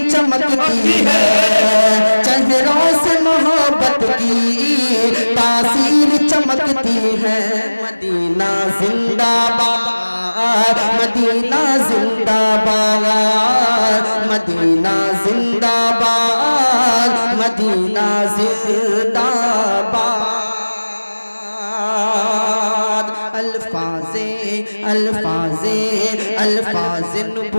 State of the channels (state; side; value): inverted; both; correlation -1.00